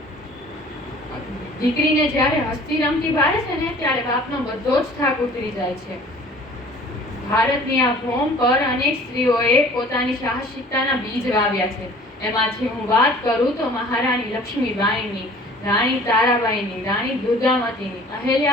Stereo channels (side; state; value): both; normal; correlation 0.49